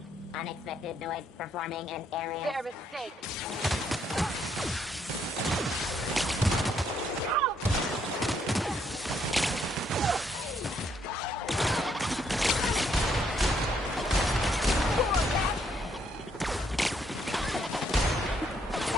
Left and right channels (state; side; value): normal; both; correlation 0.71